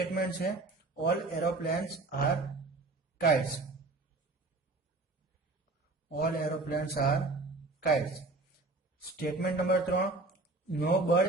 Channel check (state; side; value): quieter; left; 3.3 dB